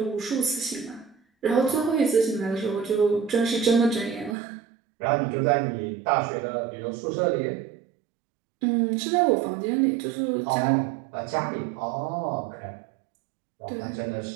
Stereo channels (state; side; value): drops out; left; at 4.4 s